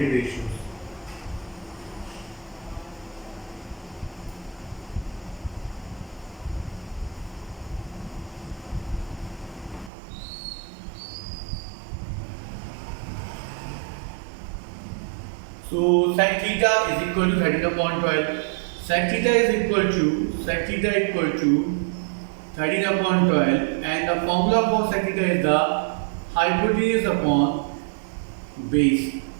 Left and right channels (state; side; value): drops out; left; at 9.9 s